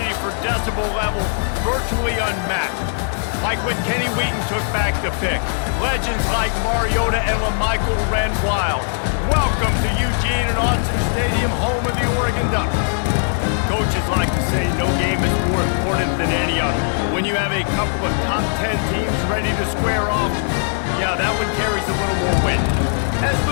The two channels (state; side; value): silent; right; digital silence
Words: for decibel level virtually unmatched. Like when Kenny Wheaton took back the pick. Legends like Mariota and LaMichael ran wild. Welcome to Eugene and Austin Stadium, home of the Oregon Ducks. Coaches like to say no game is more important than any other. When you have a couple of top 10 teams ready to square off, yeah, that one carries a little more weight. As